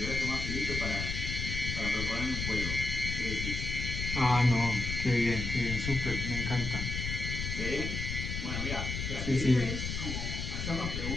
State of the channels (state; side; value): noise; left; rumble, 3 dB below the sound